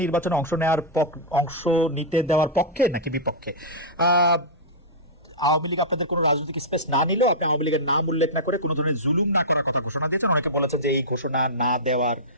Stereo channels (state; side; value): normal; both; correlation -0.13